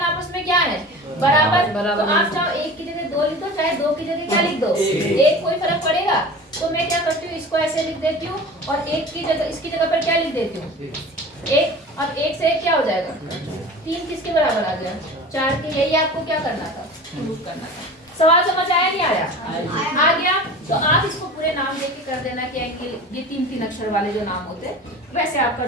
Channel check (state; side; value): normal; both; correlation 0.37